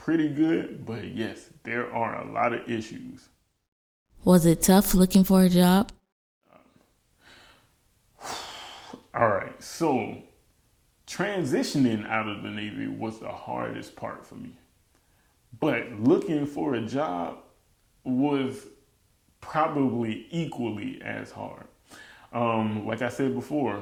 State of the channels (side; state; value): both; identical; correlation 1.00